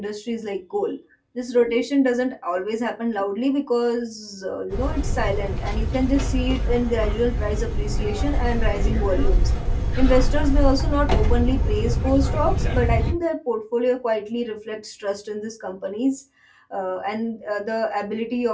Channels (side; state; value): both; identical; correlation 1.00